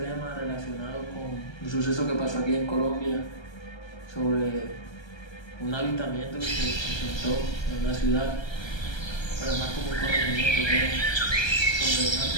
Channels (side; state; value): right; late; 1.3 ms